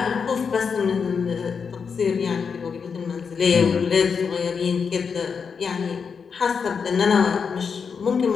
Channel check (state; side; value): quieter; right; 6.0 dB